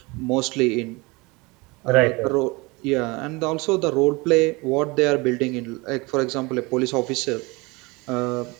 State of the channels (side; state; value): left; quieter; 25.3 dB